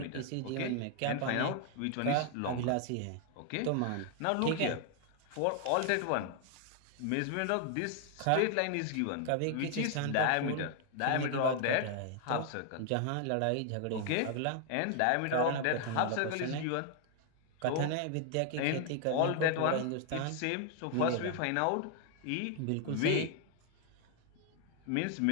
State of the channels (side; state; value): both; different; correlation 0.00